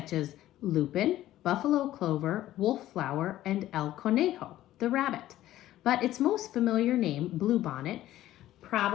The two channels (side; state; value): right; quieter; 14.1 dB